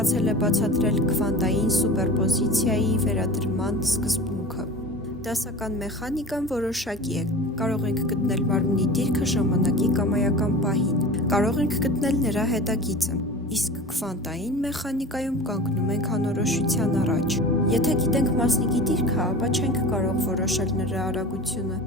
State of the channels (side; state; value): both; normal; correlation 0.35